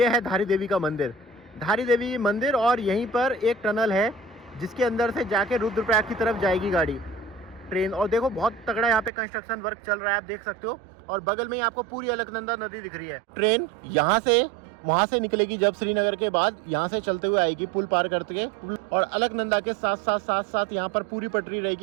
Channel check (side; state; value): left; drops out; at 9.1 s